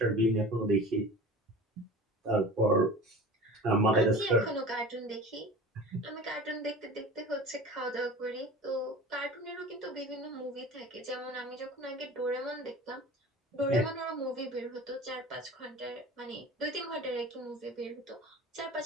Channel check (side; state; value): both; normal; correlation 0.37